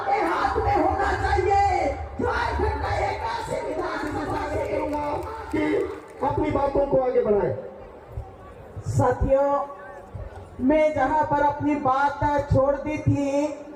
हाथ में होना चाहिए। झारखंड का 81 विधानसभा कि अपनी बातों को आगे बढ़ाएं। साथियों, मैं जहां पर अपनी बात छोड़ दी थी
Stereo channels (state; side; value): identical; both; correlation 1.00